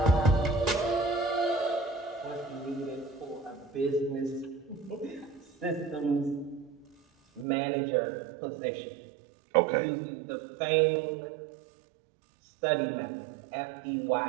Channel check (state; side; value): drops out; left; at 7.5 s